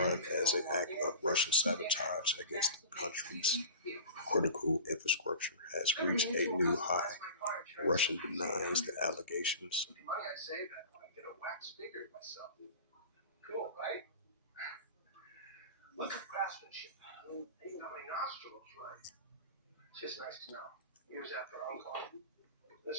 as an act of Russian sabotage against the country's critical infrastructure has reached a new high. Russia denies the allegations. Cool, right? Look at craftsmanship. Even how many nostrils, right? It's just nice to know. Years after Uncle,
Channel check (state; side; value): inverted; both; correlation -0.36